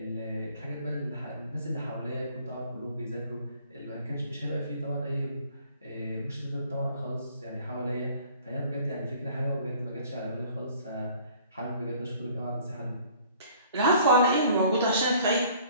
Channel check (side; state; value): both; inverted; correlation -0.54